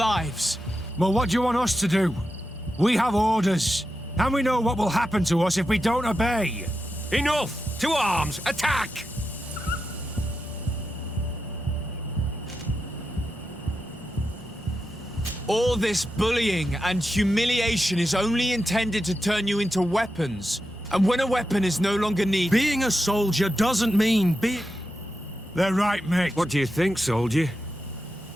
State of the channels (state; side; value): normal; both; correlation 0.89